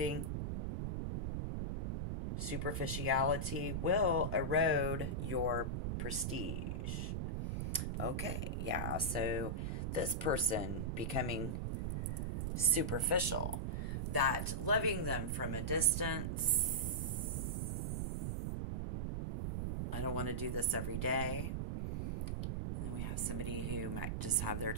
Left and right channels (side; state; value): right; noise; rumble, 1 dB below the sound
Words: Superficiality will erode your prestige. Okay, yeah, so this person becoming superficial, that loving them from a distance. I don't want to do this every day. And then we have somebody who might just have their